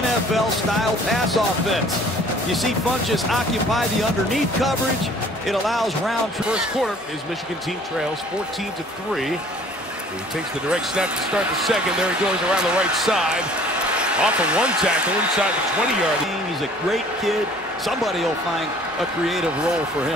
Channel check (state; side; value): normal; both; correlation 0.53